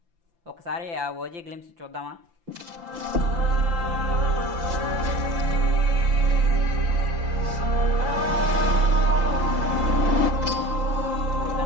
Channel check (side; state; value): left; late; 5.9 ms